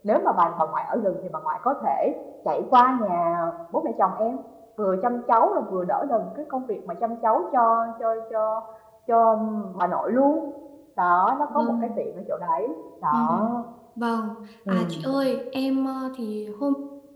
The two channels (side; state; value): both; identical; correlation 1.00